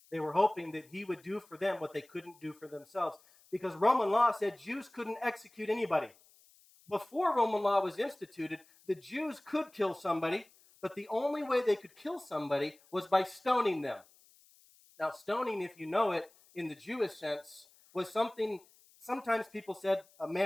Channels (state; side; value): noise; left; hiss, 28 dB below the sound